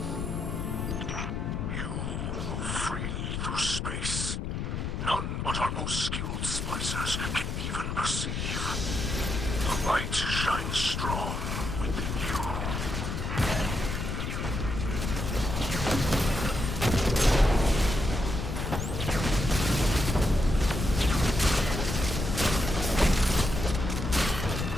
You move freely through space. None but our most skilled splicers can even perceive. The light shines strong within you.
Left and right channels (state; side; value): noise; left; rumble, 3 dB below the sound